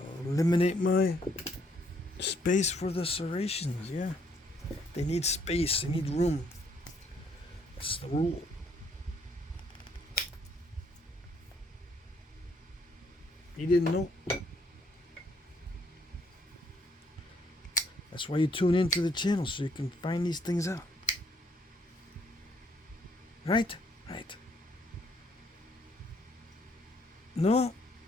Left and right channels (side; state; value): both; normal; correlation 0.68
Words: eliminate my space for the serrations. Yeah, they need space, they need room. That's the rule. You didn't know? That's why you tune into the channel, so you can find these things out. Right? Right. No,